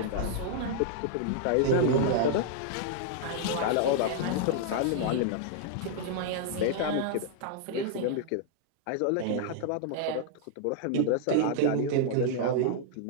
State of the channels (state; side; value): different; both; correlation -0.01